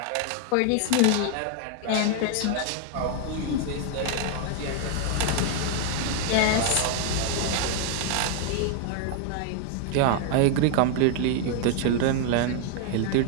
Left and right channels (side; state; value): both; different; correlation 0.00